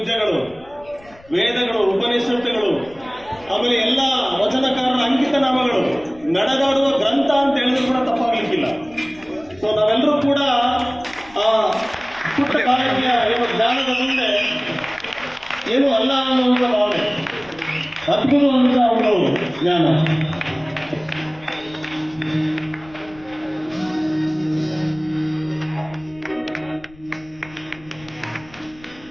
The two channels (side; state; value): left; noise; rumble, 25 dB below the sound